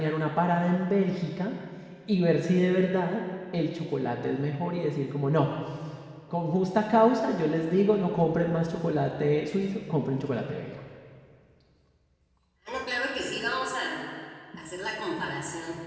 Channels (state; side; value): identical; both; correlation 1.00